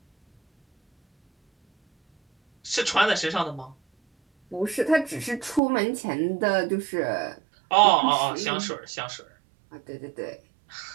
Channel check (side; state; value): left; drops out; at 5.6 s